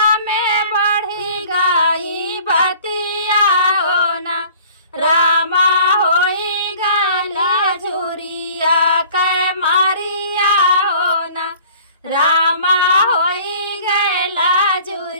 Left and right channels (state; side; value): inverted; both; correlation -0.49